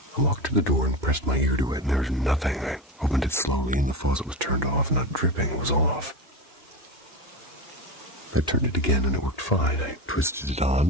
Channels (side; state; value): both; normal; correlation 0.21